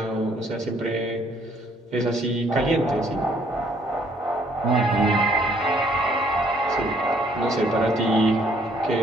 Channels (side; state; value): both; normal; correlation 0.64